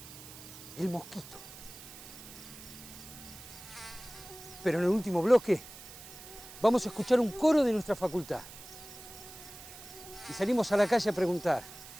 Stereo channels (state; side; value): noise; right; hiss, 15 dB below the sound